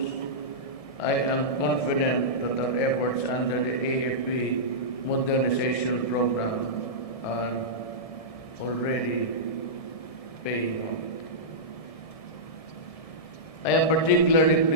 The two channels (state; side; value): late; right; 1.7 ms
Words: I am confident that our efforts under the AFP modernization program are already paying off. I am particularly